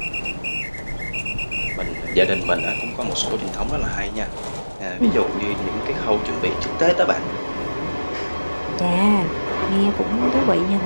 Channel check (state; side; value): inverted; both; correlation -1.00